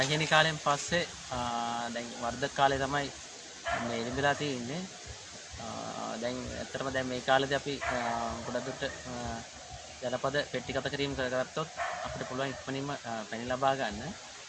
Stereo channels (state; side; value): identical; both; correlation 1.00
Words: කාලෙන් පස්සේ දැන් වර්ධක කාලේ තමයි මේ ඉඳලා තියෙන්නේ. දැන් ඇත්තටම දැන් මේ කාලේදී අපි ගොඩක් දුරට ජනපද පෙට්ටිගත කිරීම කරගත්තොත් අපිට පුළුවන් ඉක්මනින්ම පැණි ලබා ගන්න.